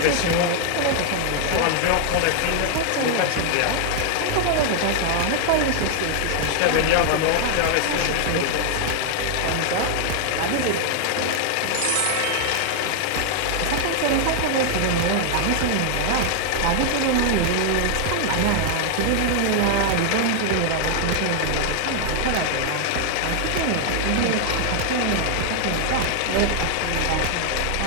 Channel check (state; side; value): different; both; correlation 0.00